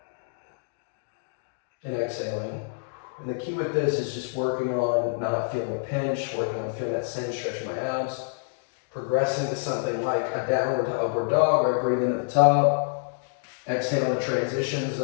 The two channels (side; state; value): right; silent; digital silence